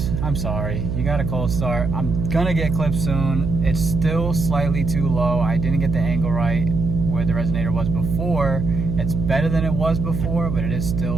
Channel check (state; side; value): noise; right; hum, 3 dB below the sound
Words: I'm sorry, you got a cold start. I'm gonna get clips soon. It's still slightly too low. I didn't get the angle right where the resonator was before, It's better than it was before, but it is